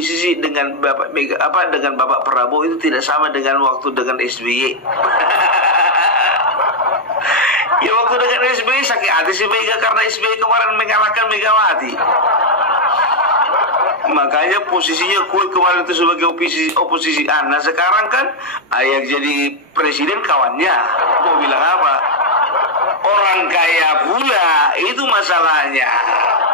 dengan dengan Bapak Prabowo itu tidak sama dengan waktu dengan SBY. Ya waktu dengan SBY sakit hati si Mega karena SBY kemarin mengalahkan Megawati. Makanya posisinya kue kemarin itu sebagai oposisi. Nah sekarang kan yang jadi presiden kawannya. Mau bilang apa? Orang kaya pula, itu masalahnya.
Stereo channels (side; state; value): both; normal; correlation 0.00